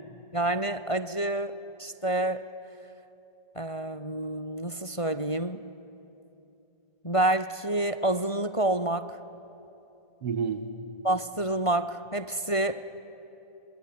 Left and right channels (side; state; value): right; late; 1.5 ms